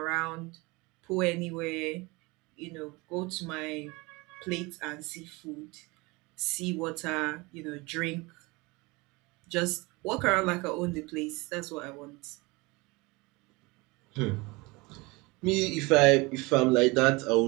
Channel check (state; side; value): quieter; left; 24.7 dB